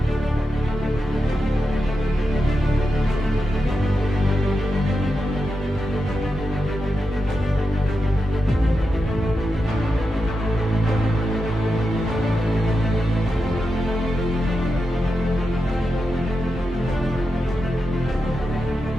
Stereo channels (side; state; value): both; normal; correlation 0.89